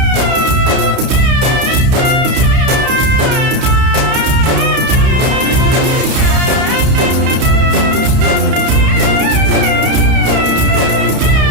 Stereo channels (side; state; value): left; late; 31 ms